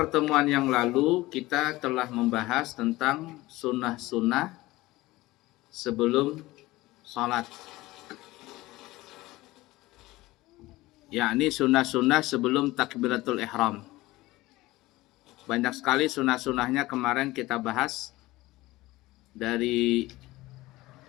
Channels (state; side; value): quieter; right; 18.9 dB